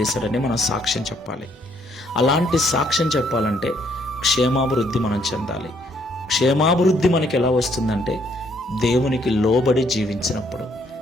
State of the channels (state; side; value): normal; both; correlation 0.68